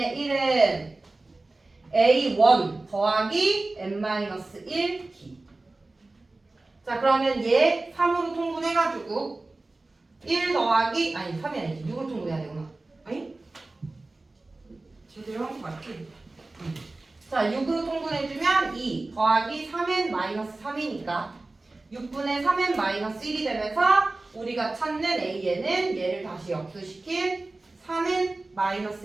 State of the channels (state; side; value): quieter; left; 3.1 dB